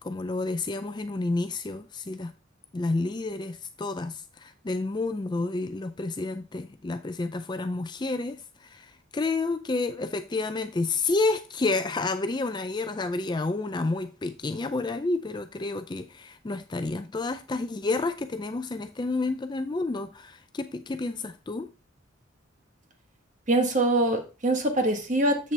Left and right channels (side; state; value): both; normal; correlation 0.52